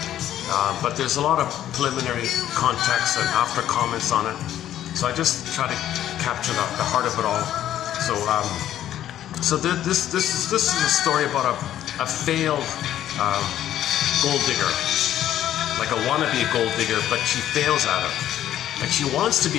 But there's a lot of preliminary context and after comments on it. So I just try to capture the heart of it all. So this is a story about a failed gold digger, like a wannabe gold digger, but she fails at it. Like she wants to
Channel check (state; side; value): quieter; right; 11.8 dB